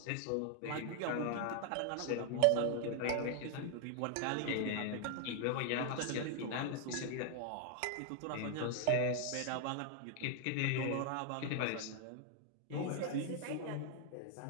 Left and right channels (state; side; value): different; both; correlation 0.00